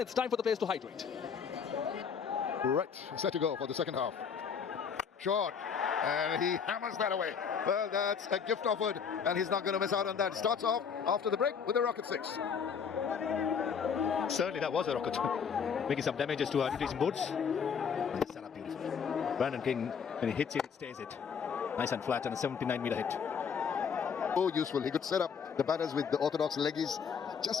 time for the players to hydrate. Right, set to go for the second half. Short, and he hammers that away. Well, that's a gift offered, and he's not going to miss out on that. Starts off after the break with a rocket 6. Certainly that was a rocket. Making some damages to our retreating boards. Set up beautifully. Brandon King, when he hits it, it stays it. Nice and flat and a 79-meter hit. So useful. He could set up the batters with the orthodox leggies.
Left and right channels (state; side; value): quieter; right; 6.6 dB